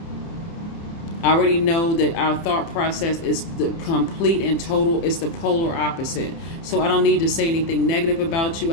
I already know that our thought process is the complete and total, it's the polar opposite. So I don't need to say anything negative about you.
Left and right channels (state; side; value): late; right; 30 ms